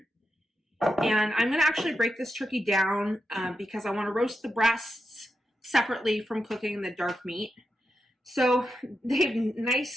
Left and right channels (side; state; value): both; normal; correlation 0.88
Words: And I'm going to actually break this turkey down because I want to roast the breasts separately from cooking the dark meat. So they've